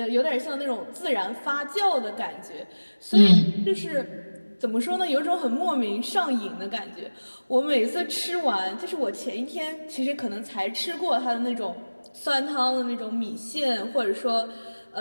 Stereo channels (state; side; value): inverted; both; correlation -1.00